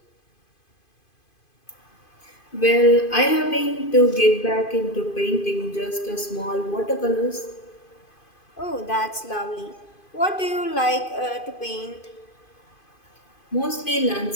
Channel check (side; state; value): right; late; 2.5 ms